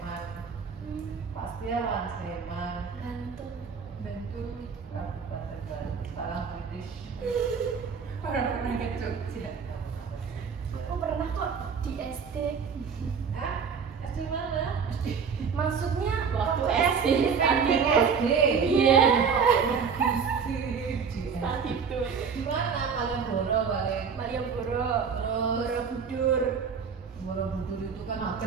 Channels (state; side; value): quieter; left; 6.1 dB